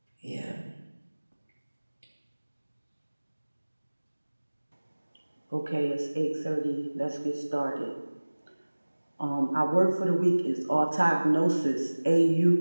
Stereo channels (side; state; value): both; inverted; correlation -1.00